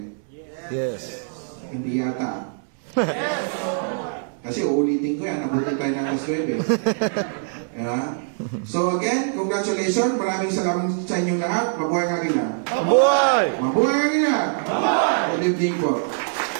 Yes. Hindi yata. Yes. Kasi uulitin ko yan, nabutin tayo ng alas 9. Yeah. So again, congratulations. Maraming salamat sa inyong lahat. Mabuhay Agila. Mabuhay! Mabuhay Agila! Mabuhay! Good evening po.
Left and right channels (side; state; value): left; silent; digital silence